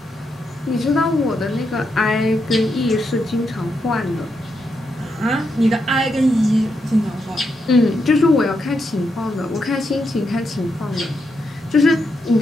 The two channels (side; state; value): both; normal; correlation 0.82